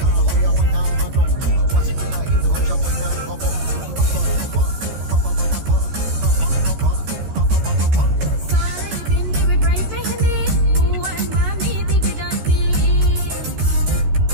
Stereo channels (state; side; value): late; left; 14 ms